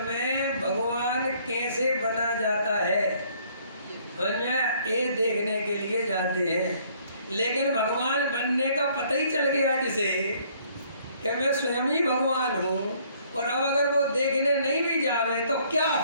में भगवान कैसे बना जाता है ये देखने के लिए जाते हैं। लेकिन भगवान बनने का पता ही चल गया जिसे कि मैं स्वयं ही भगवान हूँ, और अब अगर वो देखने नहीं भी जावे तो क्या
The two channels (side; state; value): both; inverted; correlation -0.62